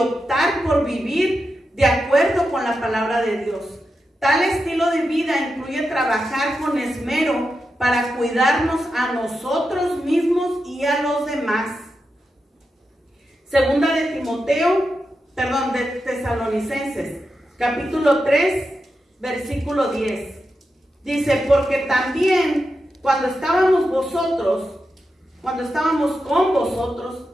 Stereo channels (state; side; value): normal; both; correlation 0.88